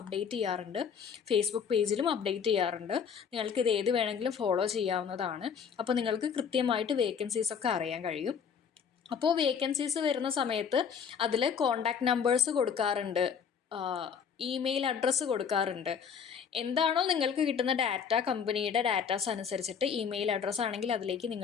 അപ്ഡേറ്റ് ചെയ്യാറുണ്ട്. ഫേസ്ബുക്ക് പേജിലും അപ്ഡേറ്റ് ചെയ്യാറുണ്ട്. നിങ്ങൾക്ക് ഇത് ഏത് വേണമെങ്കിലും ഫോളോ ചെയ്യാവുന്നതാണ്. അപ്പോൾ നിങ്ങൾക്ക് കൃത്യമായിട്ട് വേക്കൻസീസ് ഒക്കെ അറിയാൻ കഴിയും. അപ്പോൾ വേക്കൻസീസ് വരുന്ന സമയത്ത് അതിൽ കോണ്ടാക്ട് നമ്പേഴ്സ് കൊടുക്കാറുണ്ട്. ഇമെയിൽ അഡ്രസ്സ് കൊടുക്കാറുണ്ട്. എന്താണോ നിങ്ങൾക്ക് കിട്ടുന്ന ഡാറ്റ, കമ്പനിയുടെ ഡാറ്റാസ് അനുസരിച്ചിട്ട് ഇമെയിൽ അഡ്രസ്സ് ആണെങ്കിൽ അതിലേക്ക്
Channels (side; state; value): right; quieter; 7.0 dB